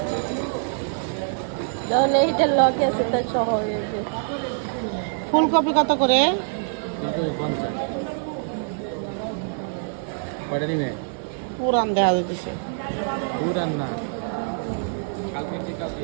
ফুলকপি কত করে? পুরান দেখা যাচ্ছে। পুরান না,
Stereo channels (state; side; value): silent; left; 62 dB below the other